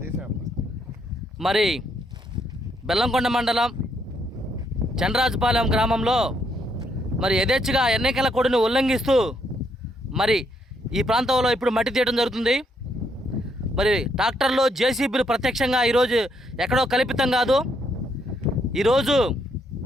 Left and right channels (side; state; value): both; normal; correlation 0.74